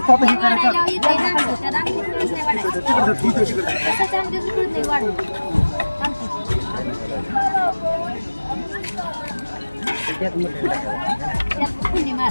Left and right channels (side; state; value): both; inverted; correlation -1.00